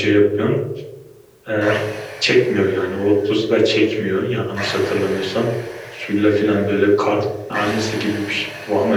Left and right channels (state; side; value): identical; both; correlation 1.00